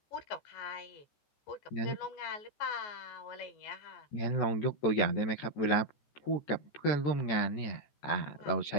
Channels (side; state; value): right; late; 14 ms